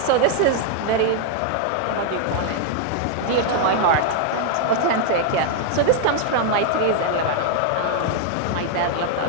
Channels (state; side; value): different; both; correlation 0.00